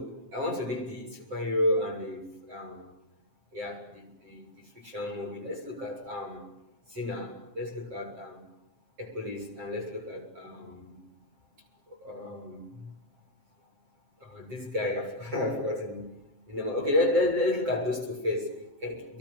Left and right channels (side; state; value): left; late; 7.5 ms